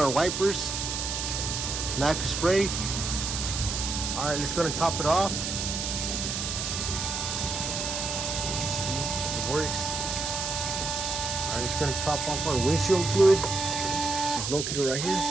wipers, nacre spray. Alright, let's go and top it off. See, it works. Alright, let's go and top off our windshield fluid. It's located right here.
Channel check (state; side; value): noise; right; hiss, 3 dB below the sound